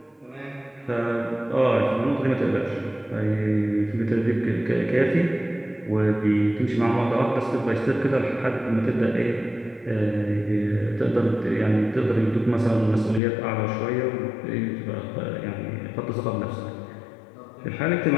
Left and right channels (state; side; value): drops out; right; at 13.2 s